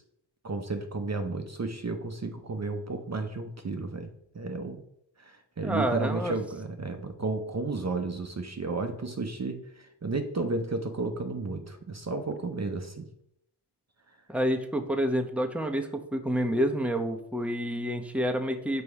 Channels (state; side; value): normal; both; correlation 0.55